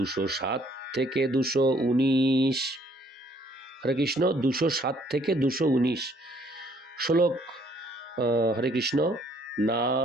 থেকে 219। হরে কৃষ্ণ। 207 থেকে 219 শ্লোক। হরে কৃষ্ণ।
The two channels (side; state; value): both; normal; correlation 0.64